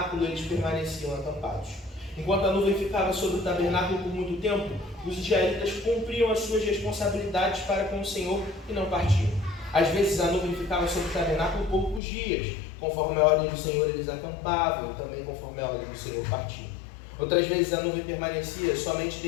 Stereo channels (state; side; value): drops out; right; at 12.0 s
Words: eles permaneciam acampados. Enquanto a nuvem ficava sobre o tabernáculo por muito tempo, os israelitas cumpriam as suas responsabilidades para com o Senhor e não partiam. Às vezes a nuvem ficava sobre o tabernáculo poucos dias, conforme a ordem do Senhor eles acampavam, e também conforme a ordem do Senhor partiam. Outras vezes a nuvem permanecia somente